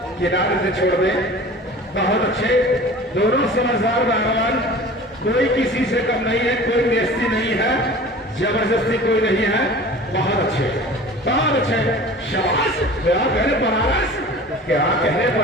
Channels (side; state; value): both; normal; correlation 0.41